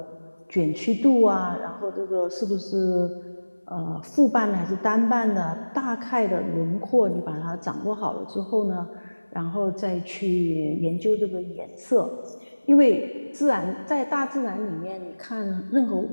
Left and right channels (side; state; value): both; inverted; correlation -1.00